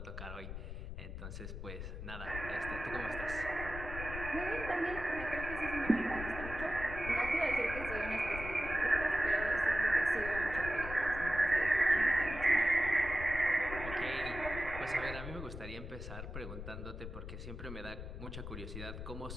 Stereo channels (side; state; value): left; noise; rumble, 8 dB below the sound